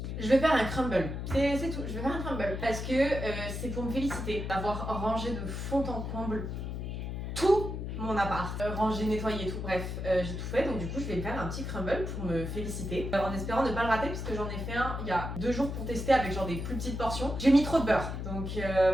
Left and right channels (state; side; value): noise; left; hum, 5 dB below the sound